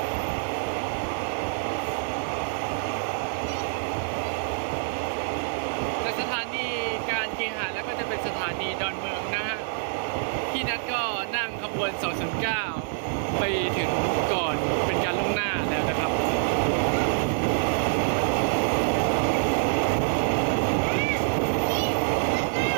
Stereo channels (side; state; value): left; silent; digital silence